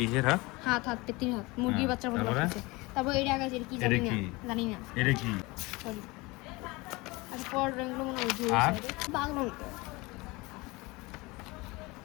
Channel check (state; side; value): quieter; right; 23.5 dB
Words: এর হাত? হাত পেটির হাত, মুরগির বাচ্চার মতো লাগছে। তারপর এই জায়গায় কি জানি না, জানি না। এটা কি? সরি। আচ্ছা, পর রংগুলো মনে হয় বাংলা মতো।